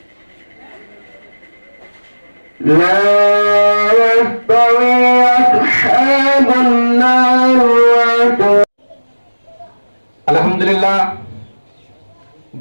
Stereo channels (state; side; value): inverted; both; correlation -1.00